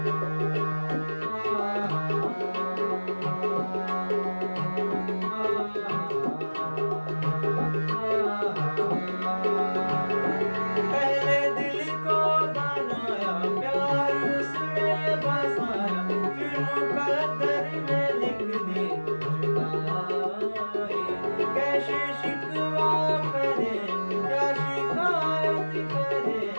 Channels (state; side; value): inverted; both; correlation -1.00